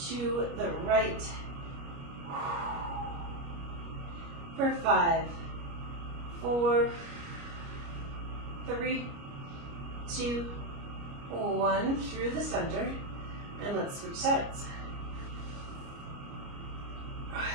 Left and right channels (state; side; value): late; left; 29 ms